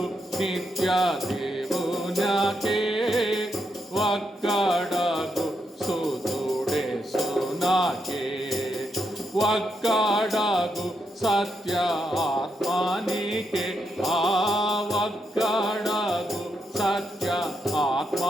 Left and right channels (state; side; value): normal; both; correlation 0.82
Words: నిత్య దేవునకే ఒక్కడగు సుతుడే సునాకే ఒక్కడగు సత్య ఆత్మానికే ఒక్కడగు సత్య